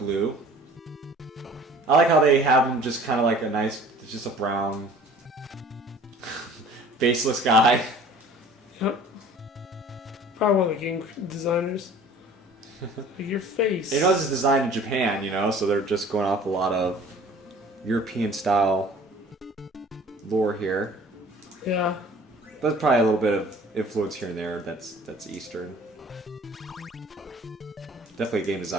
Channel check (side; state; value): both; normal; correlation 0.48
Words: I like how they have him just kind of like a nice, it's just a brown, faceless guy. Yep. Probably one of the game designers. Like your face. You know, this is designed in Japan, you know, so they're just going off a lot of European style lore here. Yeah. But probably a little bit of influence here and there that's Eastern. Definitely game